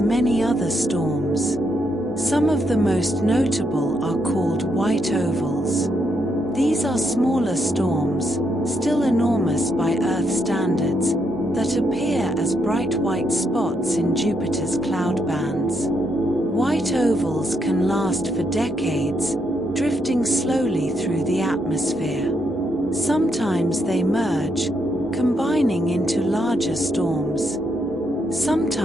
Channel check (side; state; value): both; normal; correlation 0.78